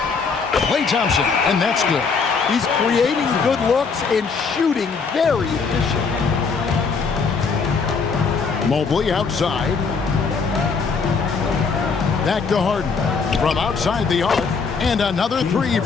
Klay Thompson, and that's good. He's creating good looks and shooting very efficient. Mobley outside. Back to Harden. From outside the arc, and another three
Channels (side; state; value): right; quieter; 5.1 dB